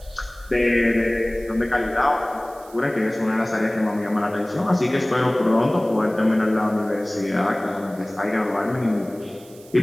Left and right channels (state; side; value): noise; right; hiss, 24 dB below the sound